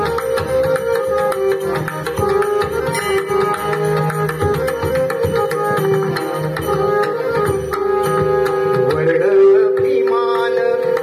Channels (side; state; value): both; identical; correlation 1.00